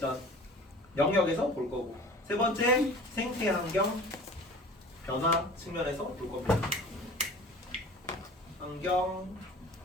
영역에서 볼 거고. 세 번째, 생태환경 변화 측면에서 볼 겁니다. 환경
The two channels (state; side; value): normal; both; correlation 0.42